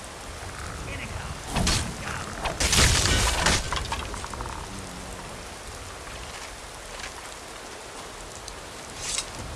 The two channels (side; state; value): both; identical; correlation 1.00